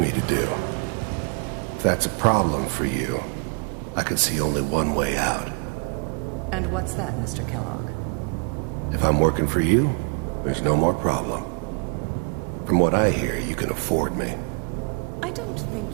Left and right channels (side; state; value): left; quieter; 35.5 dB